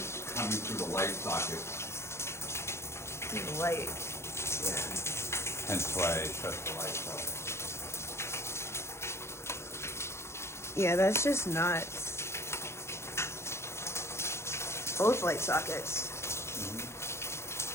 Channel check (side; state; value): right; late; 0.13 ms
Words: coming through the light socket. Light. Yeah. Hence why I shut the lights off. Yeah, that's just nuts. Both light sockets.